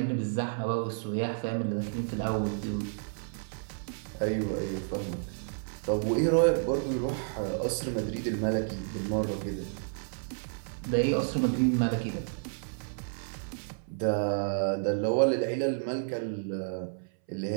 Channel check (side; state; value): left; silent; 57 dB below the other